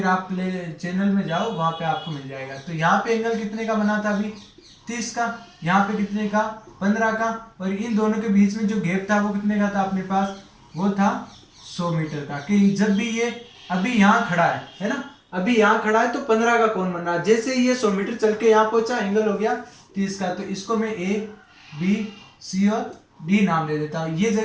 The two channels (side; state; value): both; identical; correlation 1.00